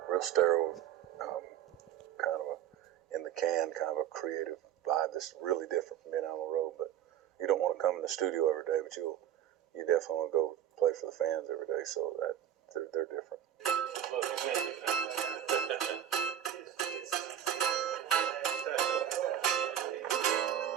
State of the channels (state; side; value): quieter; left; 10.4 dB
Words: real sterile, kind of a in the can, kind of a creative vibe that's really different from being out on the road. But you don't want to come in the studio every day, but you definitely want to go play for the fans every day. So that they're different.